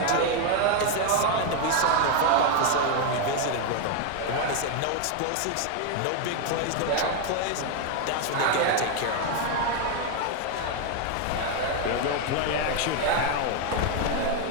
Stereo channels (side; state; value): both; different; correlation 0.01